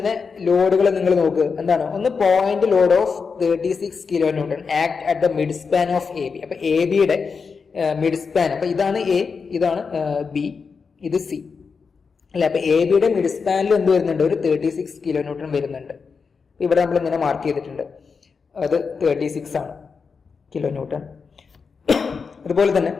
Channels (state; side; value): quieter; right; 5.3 dB